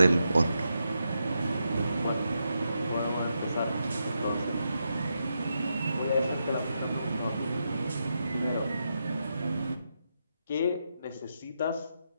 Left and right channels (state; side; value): inverted; both; correlation -0.84